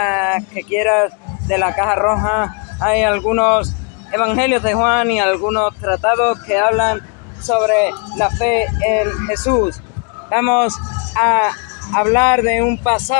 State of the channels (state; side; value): quieter; right; 36.3 dB